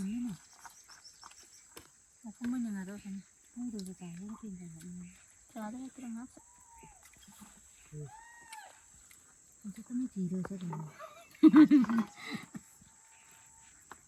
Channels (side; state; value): both; identical; correlation 1.00